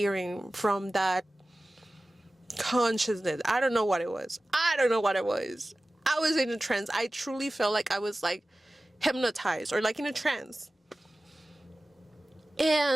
from that consciousness. I don't know what it was. I was in a trance. I truly felt like I was like hypnotized or like in a trance.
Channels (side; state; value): both; normal; correlation 0.97